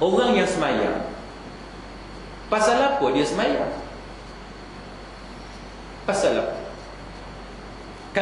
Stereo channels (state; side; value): identical; both; correlation 1.00